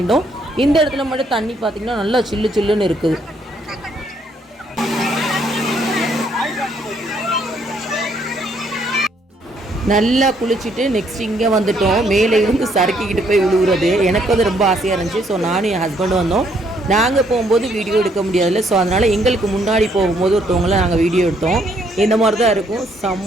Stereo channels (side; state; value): both; normal; correlation 0.69